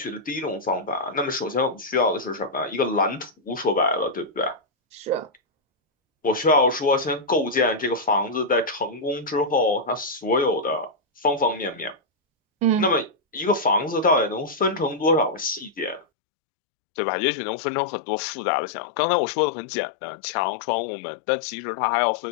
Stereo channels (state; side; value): drops out; right; at 16.1 s